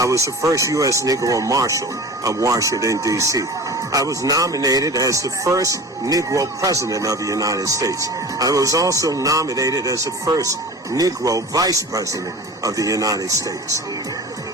was the first U.S. Negro Marshal of Washington, D.C. I was nominated as the first Negro President of the United States. I was also nominated as the first Negro Vice President of the United States.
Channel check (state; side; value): normal; both; correlation 0.36